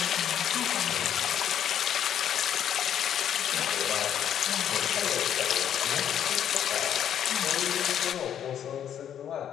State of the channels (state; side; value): quieter; right; 9.7 dB